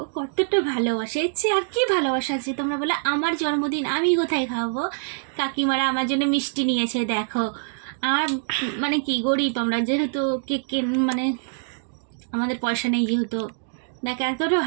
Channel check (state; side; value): silent; left; digital silence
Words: কতটা ভালোবাসে, এর চেয়ে আর কি ভালোবাসা আছে? তোমরা বলে আমার জন্মদিন আমি কোথায় খাওয়াবো, কাকিমারা আমার জন্য মিষ্টি নিয়েছে। দেখো আমার মানে কি গরিব আমরা, যেহেতু কেক মানে আমাদের পয়সা নেই, যেহেতু দেখো এতটা